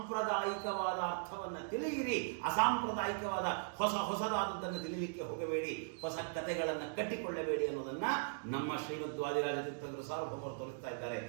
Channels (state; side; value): silent; left; digital silence